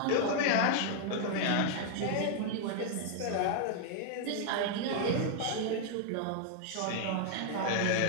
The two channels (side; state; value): both; different; correlation 0.00